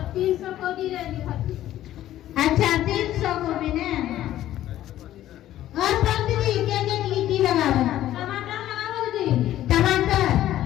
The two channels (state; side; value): quieter; right; 13.2 dB